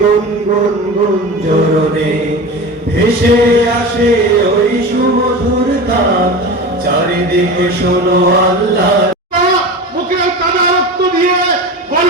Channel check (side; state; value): both; normal; correlation 0.30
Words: গুঞ্জরণে ভেসে আসে ওই সুমধুর তান, চারিদিকে শোনো আল্লাহ। মুখে কাদা রক্ত দিয়ে